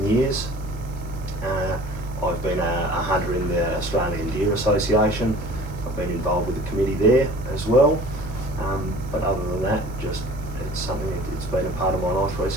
years. I've been a hunter in the Australian Deer Association. I've been involved with the committee there as well. But other than that, just it's something it's been a part of my life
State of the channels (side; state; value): right; noise; hiss, 26 dB below the sound